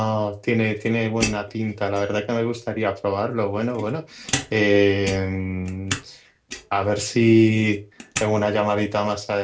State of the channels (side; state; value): both; identical; correlation 1.00